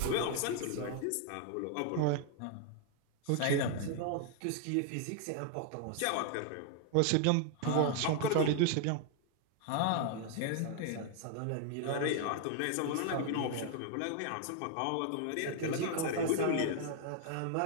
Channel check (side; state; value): both; different; correlation 0.00